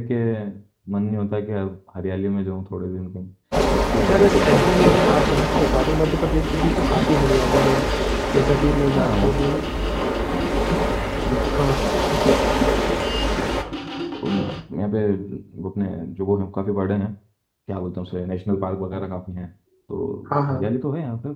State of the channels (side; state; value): both; identical; correlation 1.00